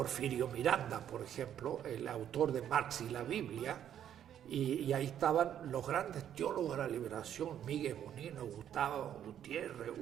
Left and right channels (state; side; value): quieter; left; 10.0 dB